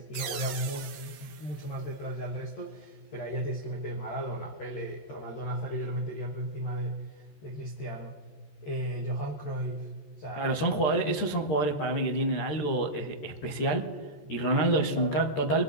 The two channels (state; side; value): late; right; 14 ms